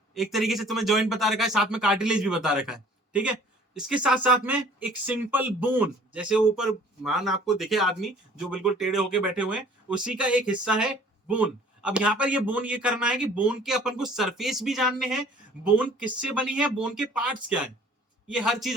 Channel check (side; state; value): both; normal; correlation 0.52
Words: एक तरीके से तुम्हें जॉइंट बता रखा है, साथ में कार्टिलेज भी बता रखा है, ठीक है। इसके साथ साथ में एक सिंपल बोन, जैसे ऊपर मान आपको दिखे आदमी जो बिल्कुल टेढ़े होके बैठे हुए हैं, उसी का एक हिस्सा है बोन। अब यहाँ पर ये बोन ये करना है कि बोन के अपन को सरफेस भी जानने हैं, बोन किससे बनी है, बोन के पार्ट्स क्या है, ये हर चीज